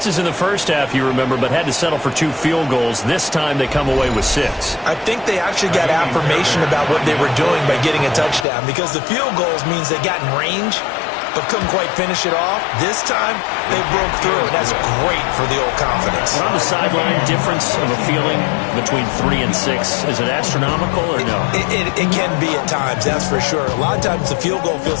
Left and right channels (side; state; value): right; drops out; at 8.5 s